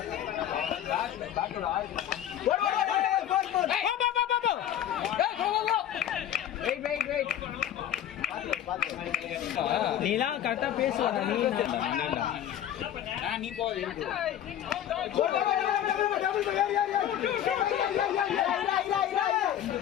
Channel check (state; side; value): quieter; right; 10.9 dB